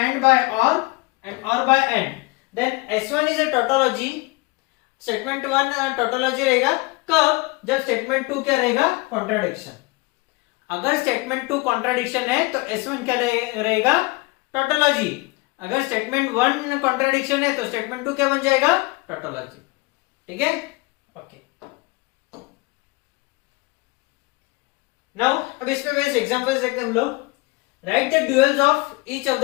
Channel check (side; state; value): right; quieter; 24.8 dB